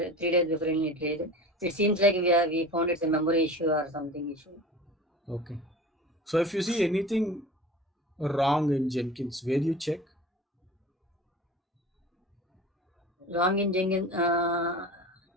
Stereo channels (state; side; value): normal; both; correlation 0.36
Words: 3 days before it raised. It seems like we found it's a memory issue or something issue. Okay. So if you see anything wrong in Jenkins, where you check? Wrong in Jenkins.